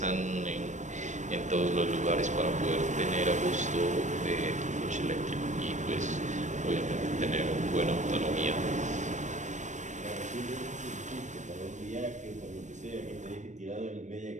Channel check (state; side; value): late; left; 0.35 ms